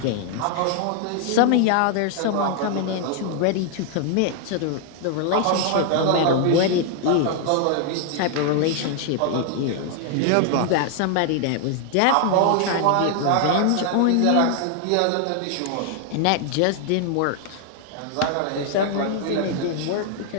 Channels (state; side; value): different; both; correlation 0.00